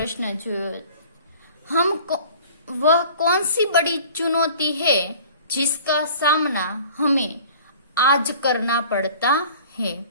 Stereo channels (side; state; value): both; inverted; correlation -0.47